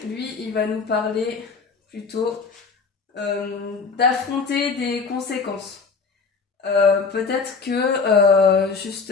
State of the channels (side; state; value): right; quieter; 4.9 dB